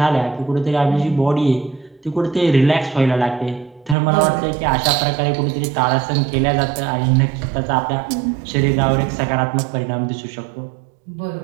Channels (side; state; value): left; drops out; at 4.0 s